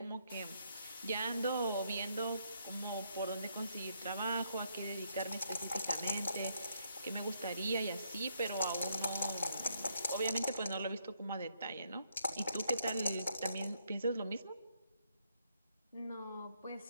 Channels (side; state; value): both; inverted; correlation -0.74